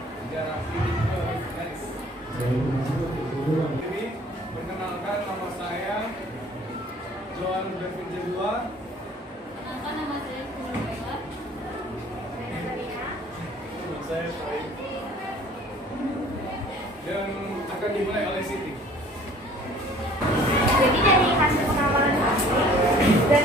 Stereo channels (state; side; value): normal; both; correlation 0.52